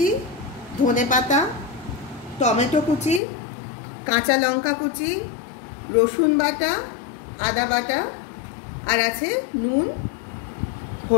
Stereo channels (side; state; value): right; drops out; at 3.2 s